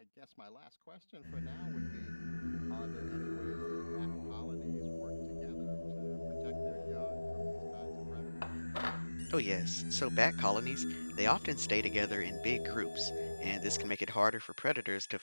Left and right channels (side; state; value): both; inverted; correlation -1.00